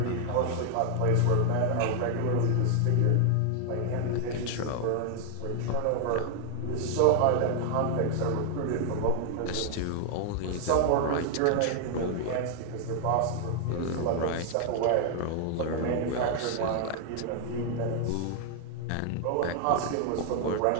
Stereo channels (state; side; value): different; both; correlation 0.00